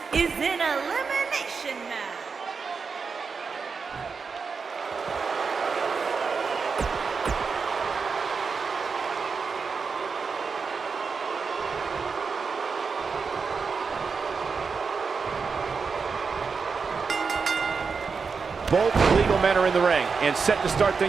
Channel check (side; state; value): left; quieter; 5.2 dB